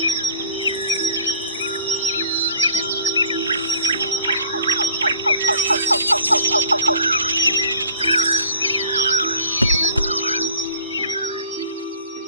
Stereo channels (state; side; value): inverted; both; correlation -0.51